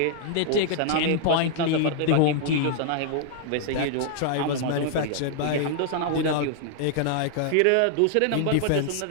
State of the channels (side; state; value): both; different; correlation -0.01